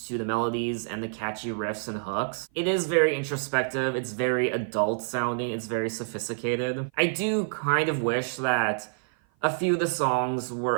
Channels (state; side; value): silent; left; 55 dB below the other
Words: to the melodies and the catchy riffs and hooks. It is very introspective, it's very adult sounding, it's very sophisticated. I do kind of wish that a few of the songs